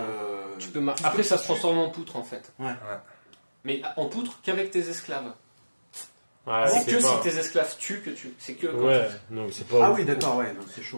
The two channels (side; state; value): both; inverted; correlation -1.00